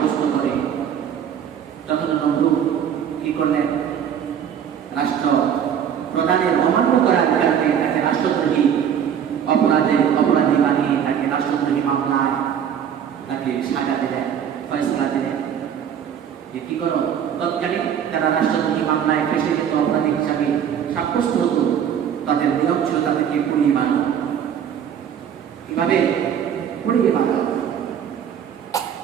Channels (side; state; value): left; quieter; 8.7 dB